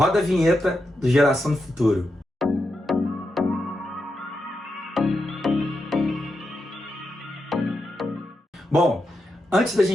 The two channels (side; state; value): both; normal; correlation 0.86